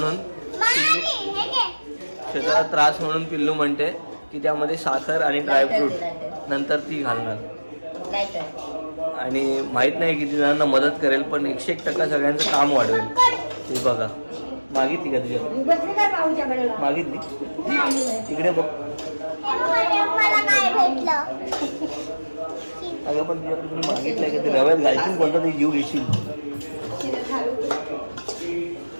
श्वेताला त्रास म्हणून पिल्लू म्हणते की त्यामध्ये साखर आणि ड्रायफ्रूट नंतर ती घालणार. आणि माहित नाही किती जणांना मदत करेल, पण 101% सगळ्यांचं काम वाढवेल. हे बघा, मागितली का तुझ्या? मागितली? तिकडे बघ. अगं पण तुझ्याकडे तुम्ही मागितलंय का? ते रव्यात घालशील कोणता तरी जीव घेशील.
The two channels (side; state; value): both; inverted; correlation -1.00